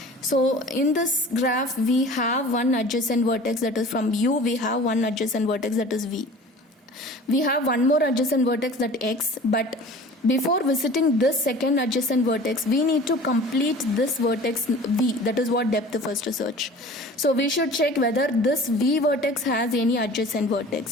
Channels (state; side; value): normal; both; correlation 0.43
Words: So in this graph we have one adjacent vertex, that is from U. We have one adjacent vertex, that is V. We have one more adjacent vertex, that X, but before visiting this second adjacent vertex we need to complete this vertex V, that is what depth first search. So we should check whether this V vertex has any adjacent